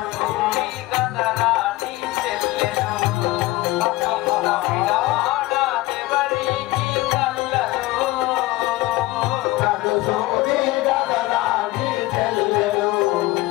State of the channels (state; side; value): quieter; right; 19.1 dB